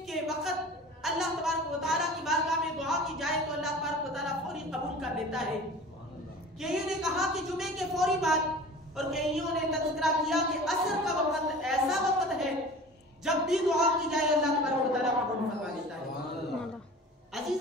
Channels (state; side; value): normal; both; correlation 0.40